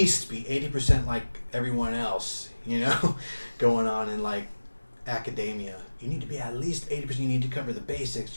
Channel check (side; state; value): both; inverted; correlation -1.00